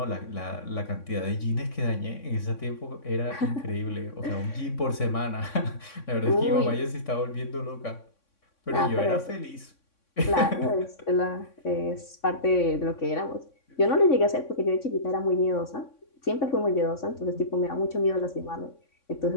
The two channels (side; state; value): right; late; 3.6 ms